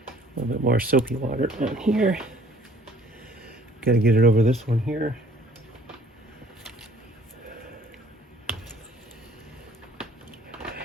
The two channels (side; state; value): both; normal; correlation 0.57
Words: little bit more soapy water on here. Got to get it over this one here.